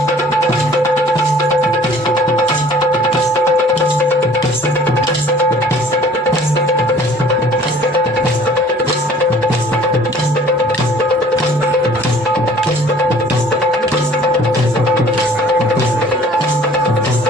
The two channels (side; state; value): both; normal; correlation 0.52